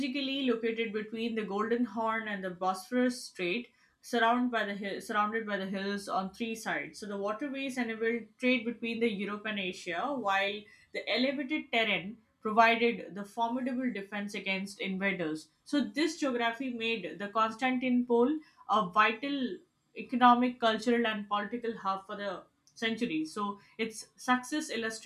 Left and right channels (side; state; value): both; identical; correlation 1.00